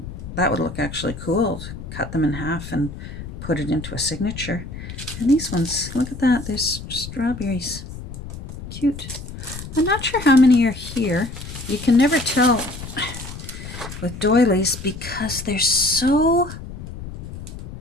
that would look actually cool. Cut them in half and put it into a signature. And these ones, look at that, there's strawberries. Cute. I'm not sure how many are here. You can never tell with doilies because they're so...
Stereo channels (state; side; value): noise; left; rumble, 11 dB below the sound